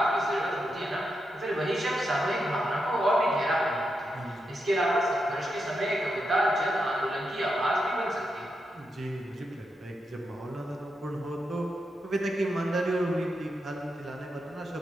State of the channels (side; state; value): both; normal; correlation 0.85